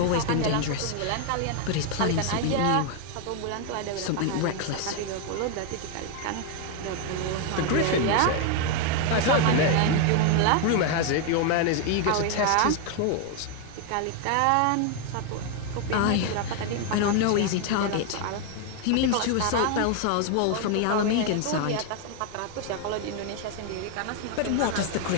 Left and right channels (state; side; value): different; both; correlation 0.01